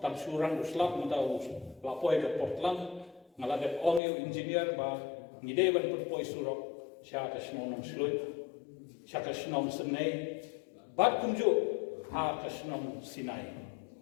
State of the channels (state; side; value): drops out; right; at 4.0 s